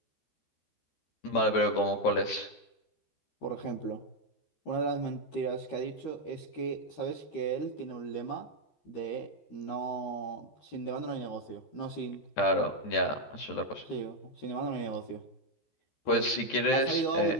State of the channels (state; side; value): late; right; 14 ms